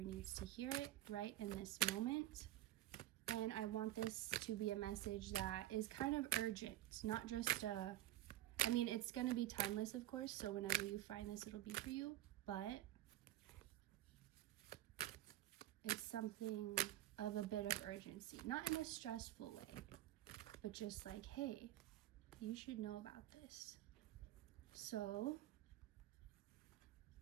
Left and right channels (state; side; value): quieter; left; 14.5 dB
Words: to hear it right in this moment. And I want this to be a message that is kind of urgent, not just it's gonna be timeless, of course, so whenever you find this, it'll be for you, but it's something of a bit of urgency, not in a stressful way, but just like, hey, you should know about this. So